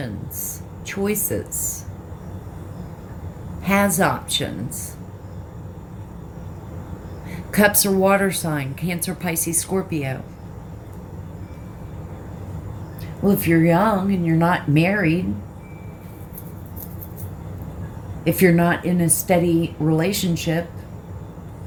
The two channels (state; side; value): identical; both; correlation 1.00